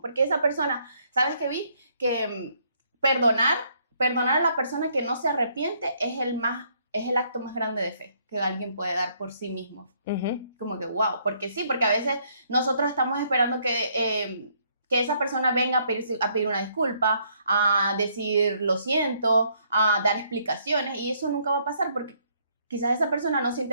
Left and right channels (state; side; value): inverted; both; correlation -0.69